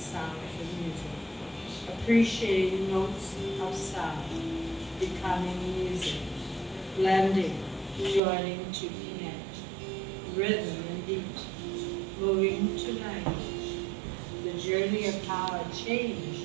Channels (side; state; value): left; drops out; at 8.2 s